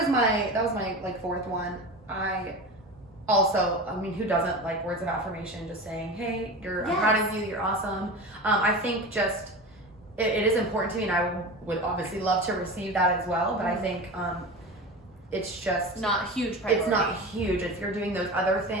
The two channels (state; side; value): normal; both; correlation 0.29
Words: my like fourth one. I mean, who doesn't like words of affirmation? Just saying, hey, I'm proud of you, you're awesome. I think just it is important to me, and I would obviously love to receive that as well. But I think it's just not huge priority. It's not huge. If you're doing those other